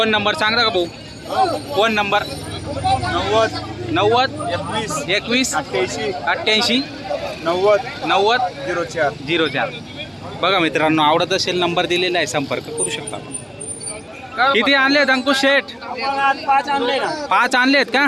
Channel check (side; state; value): both; identical; correlation 1.00